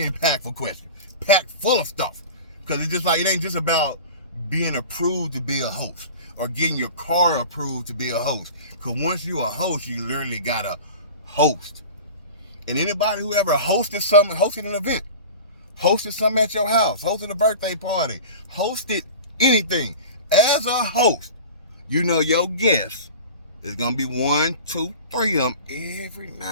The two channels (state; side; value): inverted; both; correlation -0.36